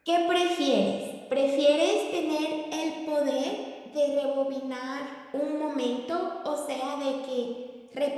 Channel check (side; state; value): both; identical; correlation 1.00